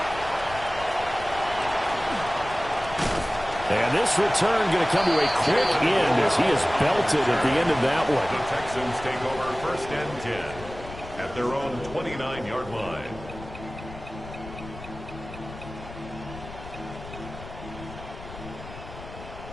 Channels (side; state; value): left; noise; rumble, 13 dB below the sound